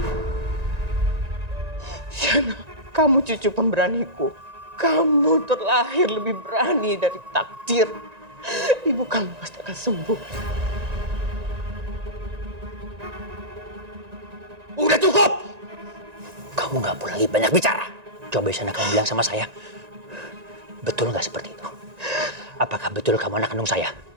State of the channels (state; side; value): late; left; 1.9 ms